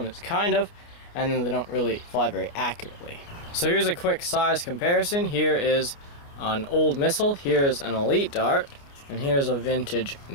is kind of, and then they don't really fly very accurately. So here's a quick size comparison. Here is an old missile, here's an elite dart, and here's a vintage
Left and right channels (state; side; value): late; right; 29 ms